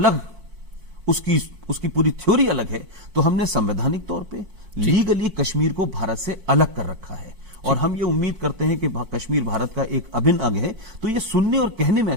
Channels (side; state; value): left; late; 4.5 ms